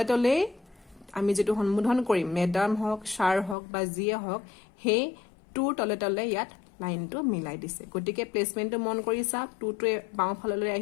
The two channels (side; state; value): right; drops out; at 3.6 s